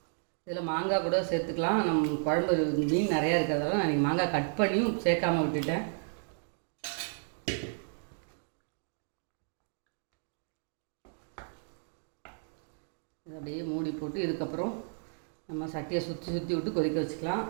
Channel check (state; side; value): silent; left; 56 dB below the other